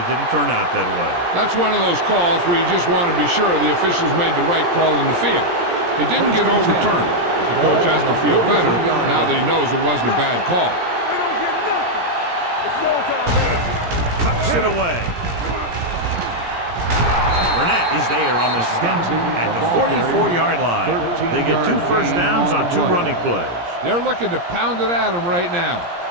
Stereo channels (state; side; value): late; left; 17 ms